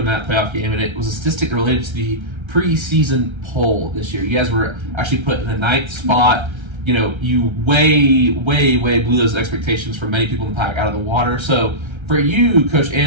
that playoff game, and it was a statistic related to the preseason poll this year. You guys were actually put in the 9th spot. You know, you way blew those expectations for many people in the pack out of the water. So for you, Coach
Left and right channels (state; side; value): late; left; 1.3 ms